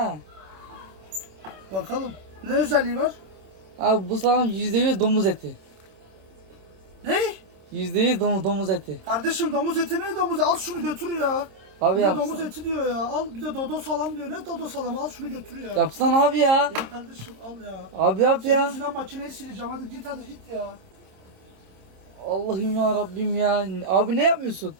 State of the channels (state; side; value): late; left; 26 ms